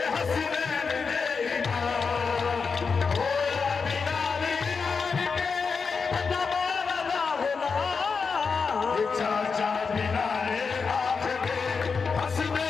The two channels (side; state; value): right; quieter; 5.2 dB